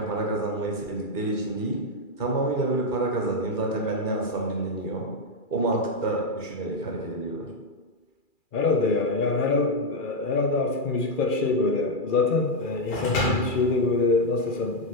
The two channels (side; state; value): right; late; 2.4 ms